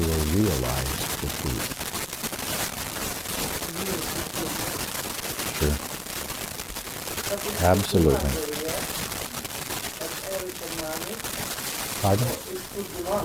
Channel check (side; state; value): both; identical; correlation 1.00